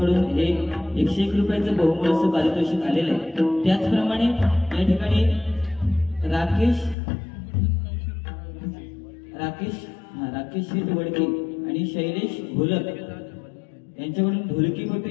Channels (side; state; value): right; drops out; at 7.0 s